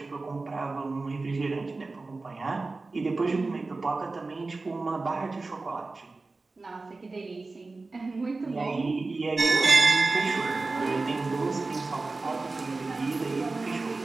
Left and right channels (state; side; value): quieter; left; 3.6 dB